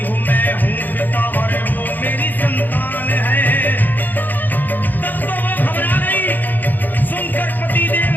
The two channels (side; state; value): right; late; 0.087 ms